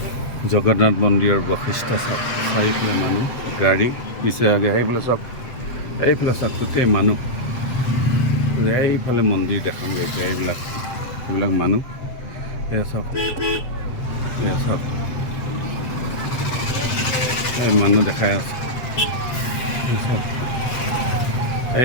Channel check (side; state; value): right; late; 7.8 ms